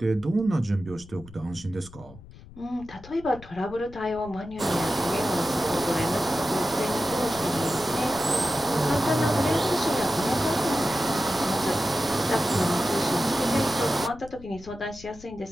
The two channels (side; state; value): left; noise; rumble, 19 dB below the sound